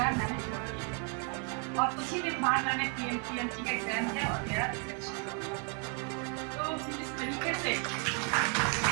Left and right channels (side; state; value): left; quieter; 39.2 dB